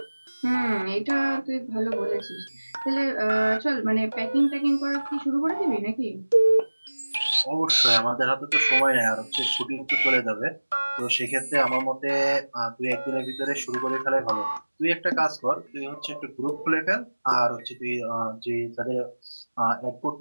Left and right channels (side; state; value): both; inverted; correlation -1.00